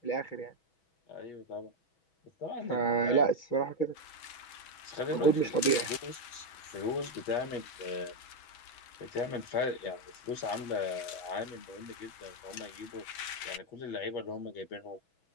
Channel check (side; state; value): right; late; 6.2 ms